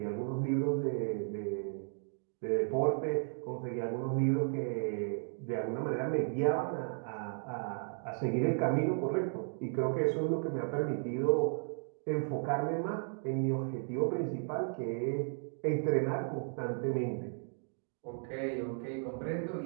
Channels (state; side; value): silent; left; 55 dB below the other